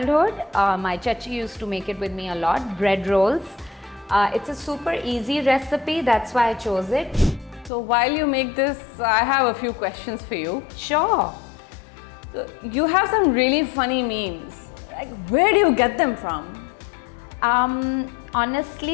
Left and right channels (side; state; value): right; drops out; at 7.7 s